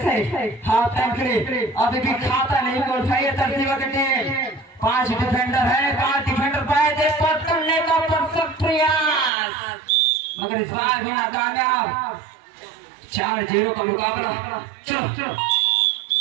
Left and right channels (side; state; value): left; drops out; at 9.3 s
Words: है। हाफ टाइम के लिए अभी भी खाता नहीं को उठाइए तरसीमा की टीम। 5 डिफेंडर है, 5 डिफेंडर पाए थे पट करने का परफेक्ट प्रयास मगर इस बार भी नाकामयाब। 4-0 का मुकाबला। चलो